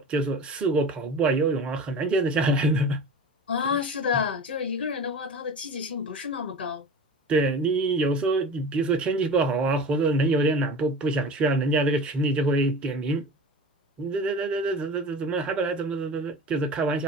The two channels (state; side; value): normal; both; correlation 0.34